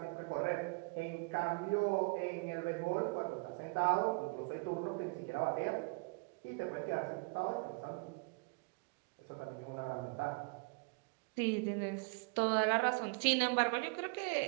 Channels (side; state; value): left; quieter; 31.3 dB